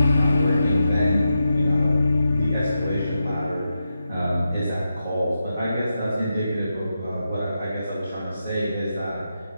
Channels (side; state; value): both; inverted; correlation -0.88